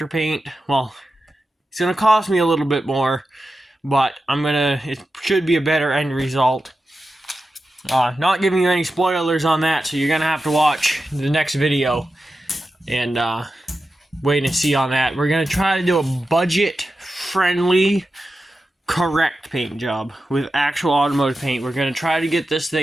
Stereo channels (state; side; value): normal; both; correlation 0.92